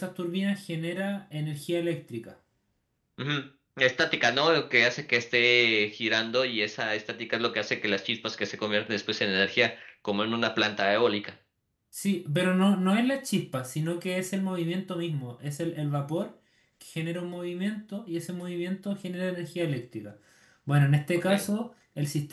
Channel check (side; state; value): both; identical; correlation 1.00